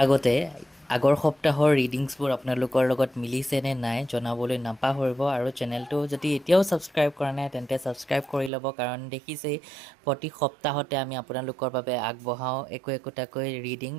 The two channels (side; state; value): left; drops out; at 8.5 s